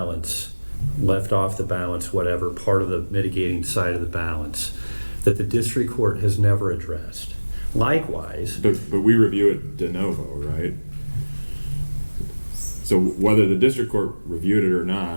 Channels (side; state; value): both; inverted; correlation -1.00